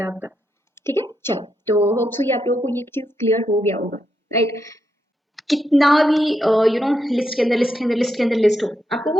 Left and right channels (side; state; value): both; normal; correlation 0.82